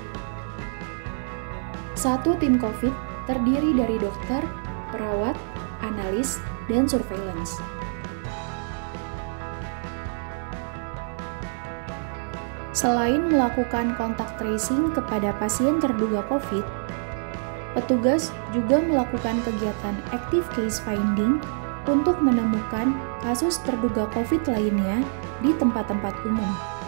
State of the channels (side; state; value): left; silent; 57 dB below the other